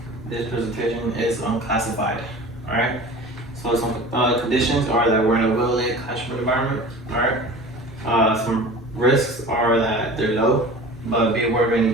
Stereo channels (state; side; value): normal; both; correlation 0.38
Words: This presentation is unclassified, alright? So some conditions are that we're in a well-lit classroom environment, alright? Some risks are that they're low, but be aware of